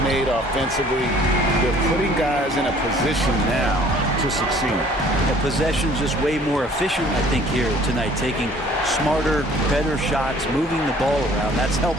made offensively, they're putting guys in a position now to succeed. The possession's just way more efficient, I think, here tonight, taking smarter, better shots, moving the ball around. That's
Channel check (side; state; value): both; normal; correlation 0.55